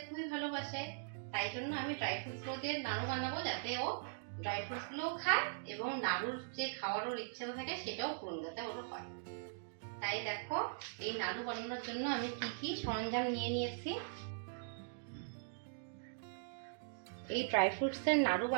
খুবই ভালোবাসে, তাই জন্য আমি ড্রাই ফ্রুটসগুলো দিয়ে নাড়ু বানাবো, যাতে ও ড্রাই ফ্রুটসগুলোও খায় এবং নাড়ুর যে খাওয়ার ওর ইচ্ছেও থাকে সেটাও পূরণ যাতে ওর হয়। তাই দেখো, এই নাড়ু বানানোর জন্য আমি কি কি সরঞ্জাম নিয়ে নিয়েছি। এই ড্রাই ফ্রুটস এর নাড়ু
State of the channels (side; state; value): left; silent; digital silence